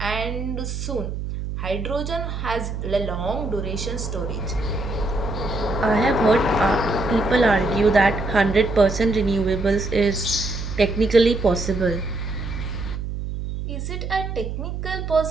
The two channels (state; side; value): noise; right; hum, 5 dB below the sound